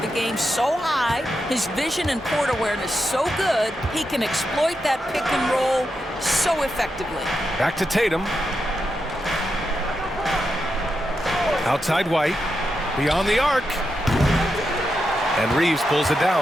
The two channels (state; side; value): normal; both; correlation 0.86